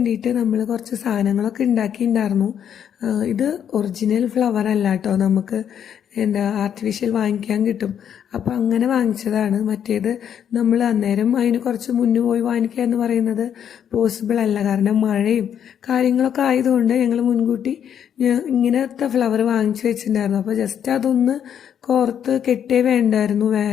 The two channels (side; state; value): right; quieter; 8.9 dB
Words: നമ്മൾ കുറച്ച് സാധനങ്ങളൊക്കെ ഉണ്ടാക്കിയിട്ടുണ്ടായിരുന്നു. ഇത് ഒറിജിനൽ ഫ്ലവർ അല്ല കേട്ടോ, നമുക്ക് ആർട്ടിഫിഷ്യൽ വാങ്ങിക്കാൻ കിട്ടും. അപ്പോൾ അങ്ങനെ വാങ്ങിച്ചതാണ്. മറ്റേത് നമ്മൾ അന്നേരം അതിന് കുറച്ച് മുന്നേ പോയി വാങ്ങിക്കുക എന്ന് പറയുന്നത് പോസിബിൾ അല്ല. കാരണം മഴയും കാര്യങ്ങളൊക്കെ ആയതുകൊണ്ട് ഞങ്ങൾ മുൻകൂട്ടി ഇങ്ങനത്തെ ഫ്ലവർ വാങ്ങിച്ചു വെച്ചിട്ടുണ്ടായിരുന്നു. അപ്പോൾ ജസ്റ്റ് അതൊന്ന് കോർത്ത് കെട്ടേ വേണ്ടായിരുന്നു.